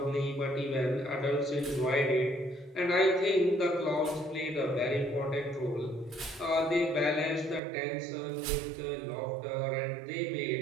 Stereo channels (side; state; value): left; drops out; at 7.6 s